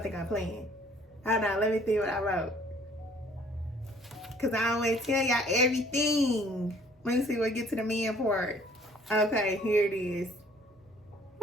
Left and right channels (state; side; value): normal; both; correlation 0.57